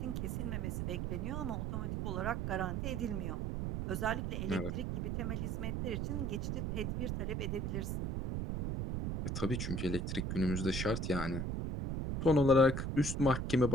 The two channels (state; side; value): noise; right; rumble, 1 dB below the sound